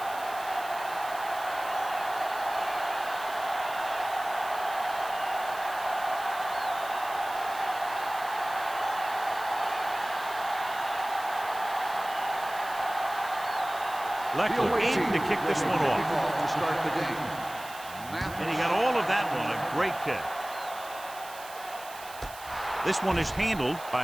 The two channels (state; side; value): noise; right; hiss, 16 dB below the sound